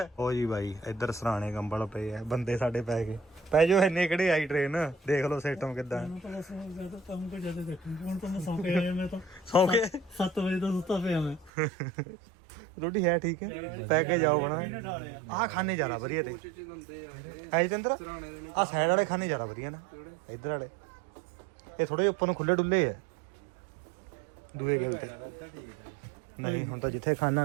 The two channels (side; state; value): left; drops out; at 11.5 s